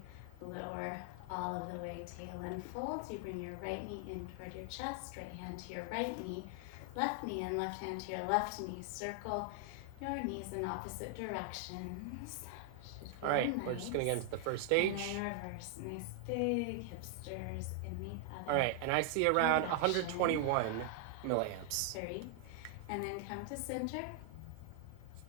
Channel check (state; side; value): different; both; correlation 0.00